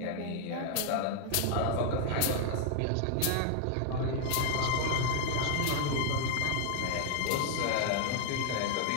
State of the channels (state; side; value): different; both; correlation 0.00